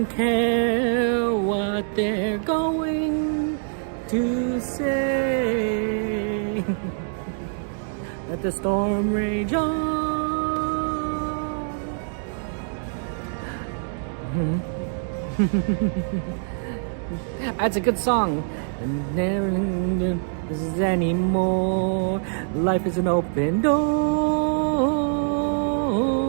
care what they're going to say. Let the storm rage on. That's a good song. Never this is anymore. Life is an open door.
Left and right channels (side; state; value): left; silent; digital silence